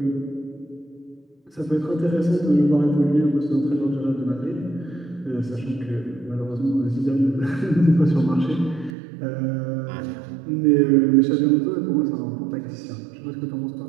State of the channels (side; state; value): left; drops out; at 8.9 s